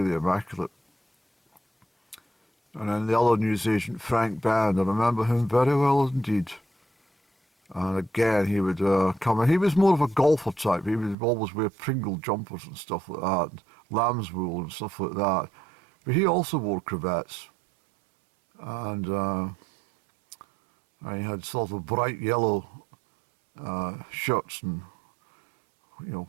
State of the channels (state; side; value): drops out; left; at 11.2 s